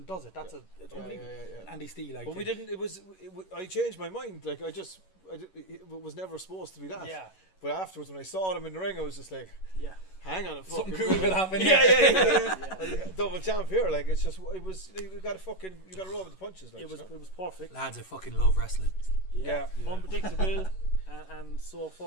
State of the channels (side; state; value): right; late; 11 ms